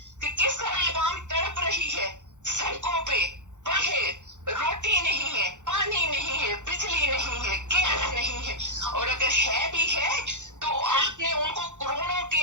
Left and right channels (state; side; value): late; left; 0.85 ms